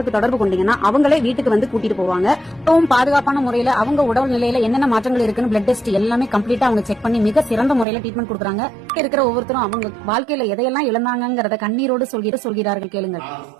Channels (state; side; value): drops out; left; at 7.9 s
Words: தொடர்பு கொண்டீங்கன்னா அவங்களே வீட்டுக்கு வந்து கூட்டிட்டு போவாங்க. ரொம்பவும் பாதுகாப்பான முறையில அவங்க உடல் நிலையில என்னென்ன மாற்றங்கள் இருக்குன்னு பிளட் டெஸ்ட் எல்லாமே கம்ப்ளீட்டா அவங்க செக் பண்ணி மிக சிறந்த முறையில ட்ரீட்மெண்ட் கொடுக்குறாங்க. இருக்கிற ஒவ்வொருத்தரும் அவங்க வாழ்க்கையில எதையெல்லாம் இழந்தாங்கிறத கண்ணீரோடு சொல்கிறார்கள். கேளுங்க.